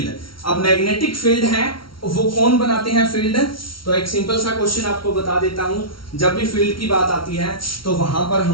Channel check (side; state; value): right; late; 0.73 ms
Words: अब मैग्नेटिक फील्ड है वो कौन बनाते हैं फील्ड, तो एक सिंपल सा क्वेश्चन आपको बता देता हूं. जब भी फील्ड की बात आती है तो वहां पर